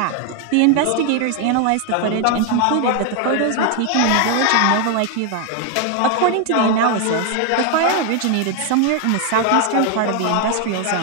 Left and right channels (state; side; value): different; both; correlation 0.00